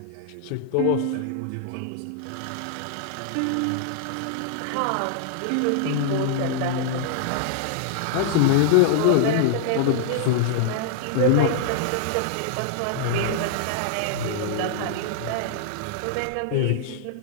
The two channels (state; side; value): different; both; correlation -0.01